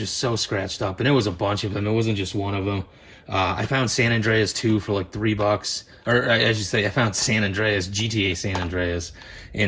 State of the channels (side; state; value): both; identical; correlation 1.00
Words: so scratched up, and it was a bunch of them. It wasn't just one of them. I found San Andreas 2 for like $3, or I should say I found San Andreas, GTA San Andreas,